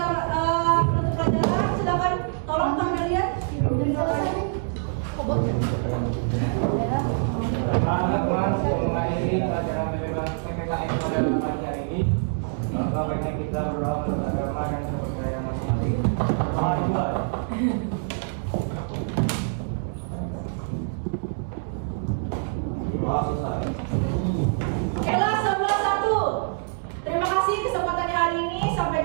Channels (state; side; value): silent; left; digital silence